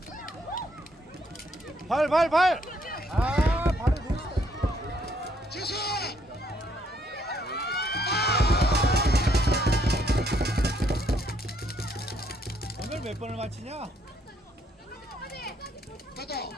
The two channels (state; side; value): normal; both; correlation 0.70